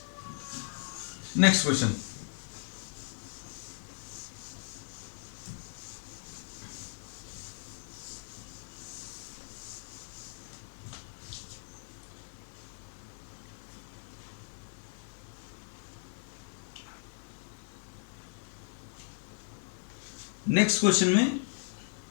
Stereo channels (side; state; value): right; silent; 53 dB below the other